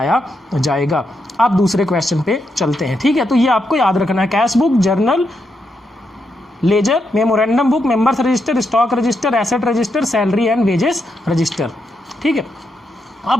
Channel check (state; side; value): normal; both; correlation 0.82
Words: जाएगा। अब दूसरे क्वेश्चन पे चलते हैं। ठीक है, तो ये आपको याद रखना है, cash book, journal, ledger, memorandum book, members register, stock register, asset register, salary and wages register. ठीक है, अब